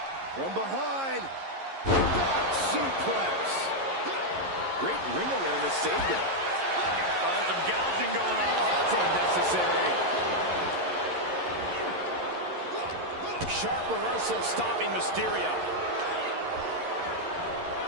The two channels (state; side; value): late; left; 11 ms